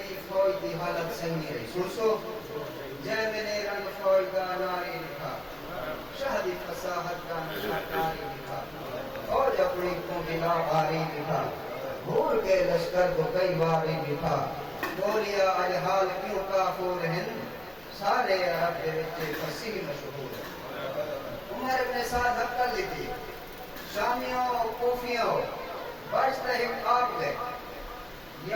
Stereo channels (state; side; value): noise; left; hum, 27 dB below the sound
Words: فوج کی حالت صحیح نہیں رہی. سنسو جے میں نے رنگ فوج کا ناری لکھا, شہدی فصاحت کا نشانی لکھا, فوج اپنی کو بلا باری لکھا, بھول کے لشکر کو کئی باری لکھا, بولیا الحال کیوں کافور ہیں, سارے عرب کے بچے فصیح مشہور ہیں. عمر ابن سعد حق کر لیتی, شامیوں کوفیوں بچتا ہی آپ گئے,